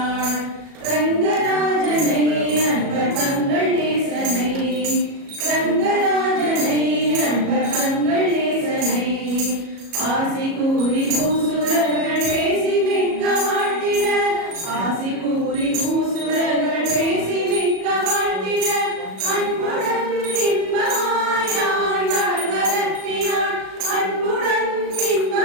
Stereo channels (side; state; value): left; late; 37 ms